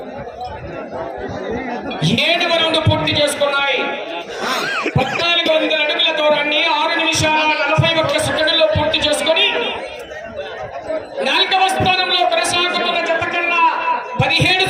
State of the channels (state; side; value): identical; both; correlation 1.00